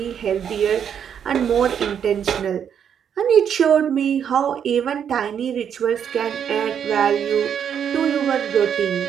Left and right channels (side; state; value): left; quieter; 8.3 dB